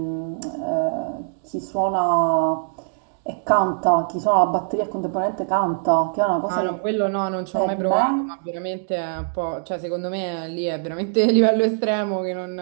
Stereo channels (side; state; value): left; silent; digital silence